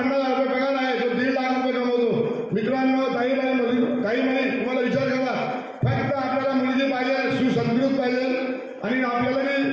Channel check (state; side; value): identical; both; correlation 1.00